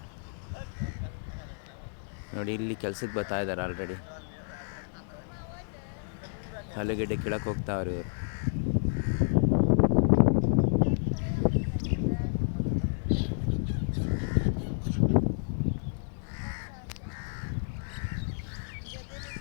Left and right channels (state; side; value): silent; right; digital silence